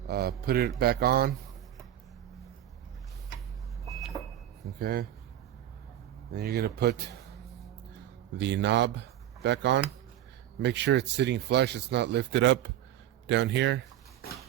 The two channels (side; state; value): left; quieter; 12.1 dB